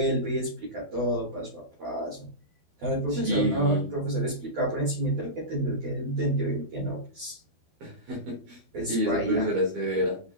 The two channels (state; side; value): late; left; 12 ms